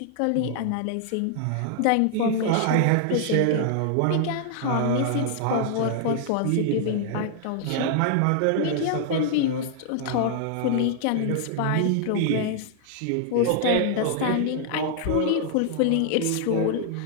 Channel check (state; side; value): different; both; correlation 0.00